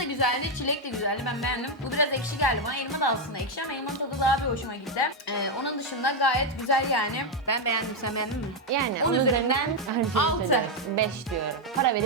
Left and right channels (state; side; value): normal; both; correlation 0.03